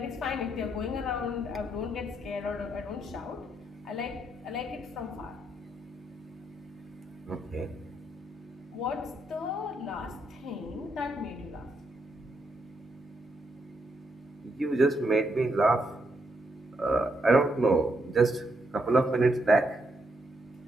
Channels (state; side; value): normal; both; correlation 0.78